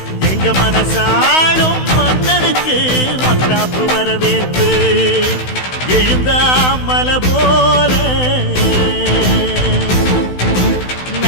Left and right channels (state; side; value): late; right; 16 ms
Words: எங்க மனசாளும் மன்னனுக்கு மத்தாப்பு வரவேற்பு எழுந்தா மலை போல